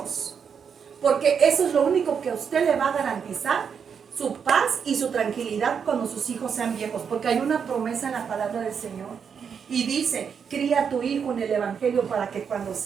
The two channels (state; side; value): quieter; left; 6.8 dB